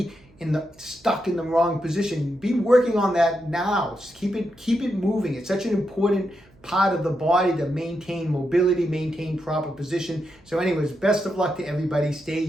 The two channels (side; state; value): right; noise; hum, 29 dB below the sound